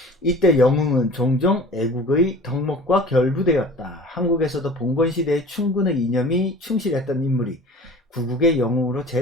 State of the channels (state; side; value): normal; both; correlation 0.42